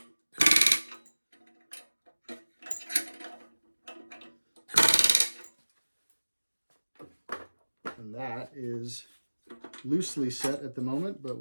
And that is loosely set at the moment, but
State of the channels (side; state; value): both; inverted; correlation -1.00